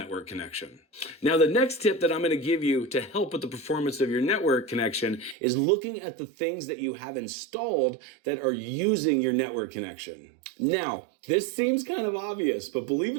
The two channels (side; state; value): left; drops out; at 5.4 s